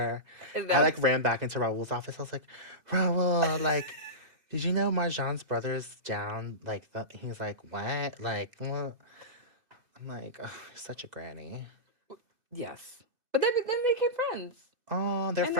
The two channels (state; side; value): late; left; 2.0 ms